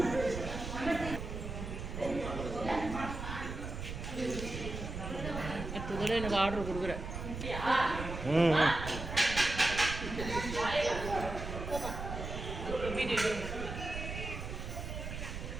அடுத்ததோட எனக்கு ஆர்டர் கொடுக்குறேன்.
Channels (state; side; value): noise; right; rumble, 6 dB below the sound